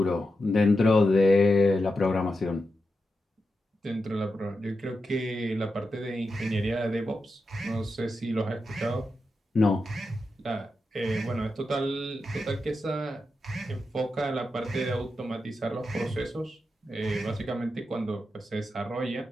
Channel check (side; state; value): both; normal; correlation 0.88